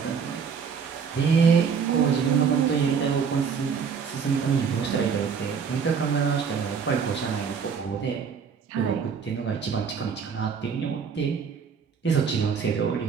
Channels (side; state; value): left; quieter; 6.3 dB